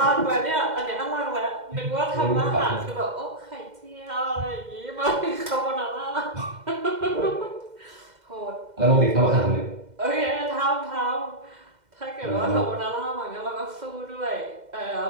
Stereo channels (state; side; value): late; left; 2.1 ms